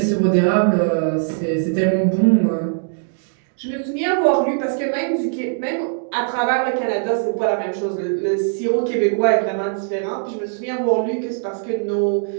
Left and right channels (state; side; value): silent; left; digital silence